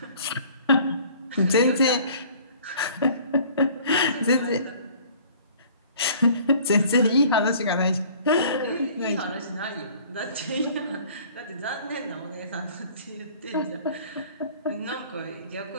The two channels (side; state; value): both; inverted; correlation -0.51